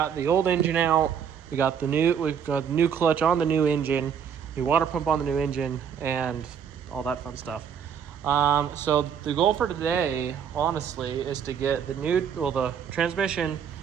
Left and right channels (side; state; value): left; quieter; 7.8 dB